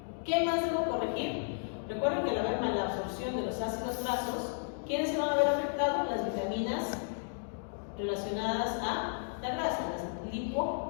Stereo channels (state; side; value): silent; right; digital silence